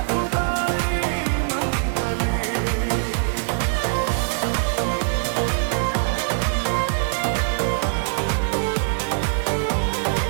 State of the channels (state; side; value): silent; left; digital silence